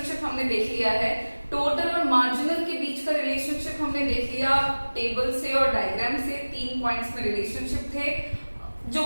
हमने देख लिया है। टोटल और मार्जिनल के बीच का रिलेशनशिप हमने देख लिया टेबल से और डायग्राम से। 3 पॉइंट्स में रिलेशनशिप थे जो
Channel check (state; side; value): inverted; both; correlation -1.00